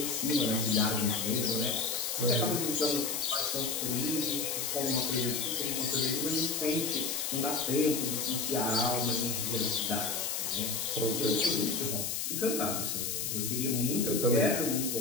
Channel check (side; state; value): left; noise; hiss, 1 dB below the sound